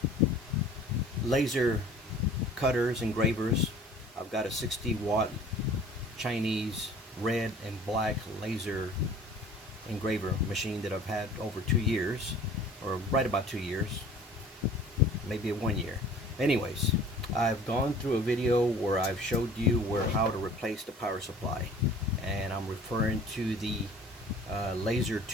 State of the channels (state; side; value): normal; both; correlation 0.48